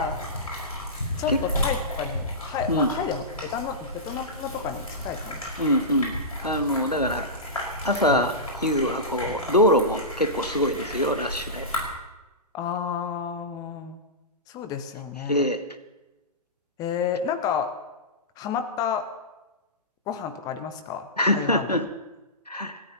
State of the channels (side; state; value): both; normal; correlation -0.17